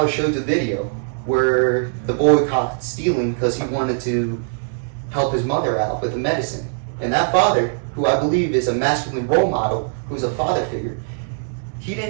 I showed the video, where the boy caught stealing because he wanted to help his mother out with the medicine. And that father, who I believe is a masculine role model, who's a father figure, he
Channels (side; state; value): left; silent; digital silence